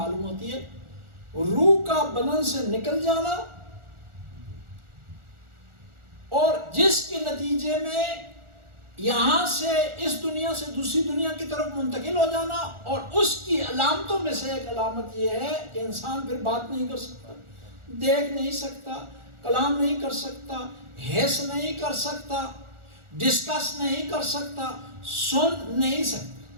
ہوتی ہے: روح کا بدن سے نکل جانا، اور جس کے نتیجے میں یہاں سے اس دنیا سے دوسری دنیا کی طرف منتقل ہو جانا. اور اس کی علامتوں میں سے ایک علامت یہ ہے کہ انسان پھر بات نہیں کر سکتا، دیکھ نہیں سکتا، کلام نہیں کر سکتا، حس نہیں کر سکتا، ڈسکس نہیں کر سکتا، سن نہیں سکتا.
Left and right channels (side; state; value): left; late; 1.4 ms